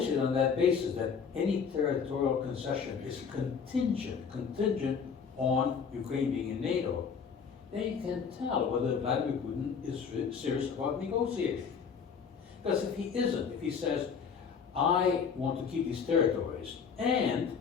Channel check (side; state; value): right; quieter; 6.4 dB